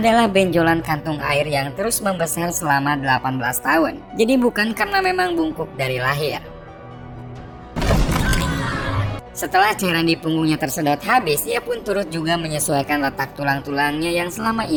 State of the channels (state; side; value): identical; both; correlation 1.00